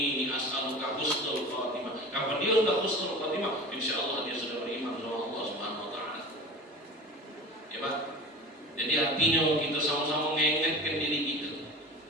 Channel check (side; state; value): both; normal; correlation 0.36